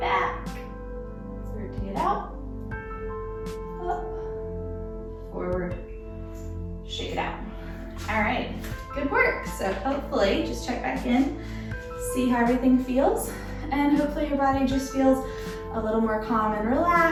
Rotate out. Up. Forward. Shake it out. All right, good work. So hopefully, just check back in, see how everything feels, and hopefully your body just feels a little more calm and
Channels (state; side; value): identical; both; correlation 1.00